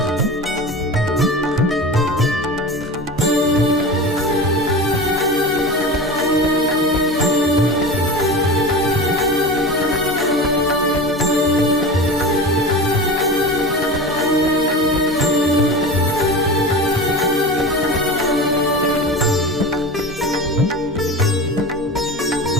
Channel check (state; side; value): normal; both; correlation 0.30